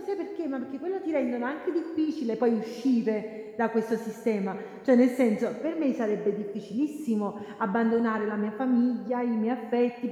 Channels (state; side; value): identical; both; correlation 1.00